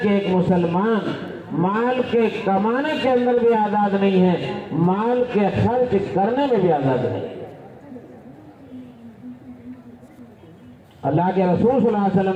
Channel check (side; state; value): both; identical; correlation 1.00